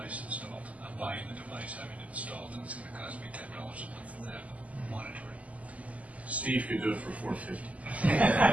installed. I'm buying the device, having it installed, and it's going to cost me $10 a month to have it monitored. Steve could do it for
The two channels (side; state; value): left; late; 0.070 ms